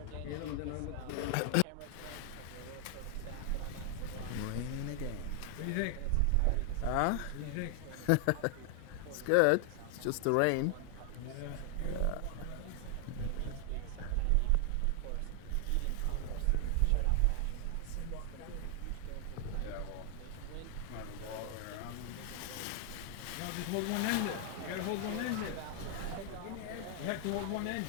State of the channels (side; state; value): both; different; correlation 0.00